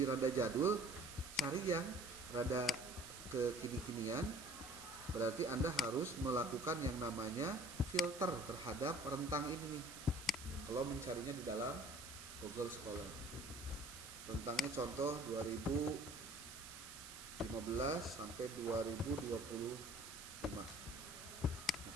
rada jadul, cari yang rada kekini-kinian. Berarti Anda harus melakukan yang namanya filter terhadap rentang ini nih. Kalau mencarinya di dalam Google Scholar. Rentangnya contoh 2015 sampai 2025.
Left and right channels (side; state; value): right; noise; hiss, 12 dB below the sound